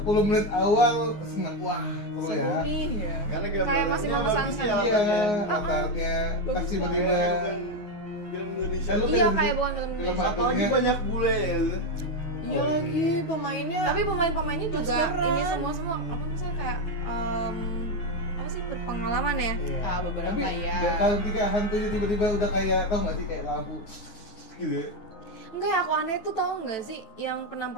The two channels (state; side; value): late; right; 9.6 ms